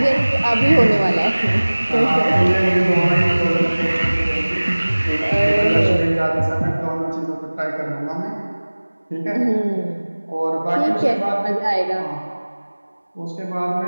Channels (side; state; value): both; inverted; correlation -1.00